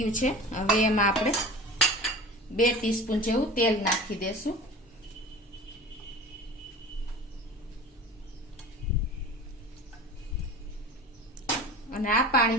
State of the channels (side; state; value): both; normal; correlation 0.37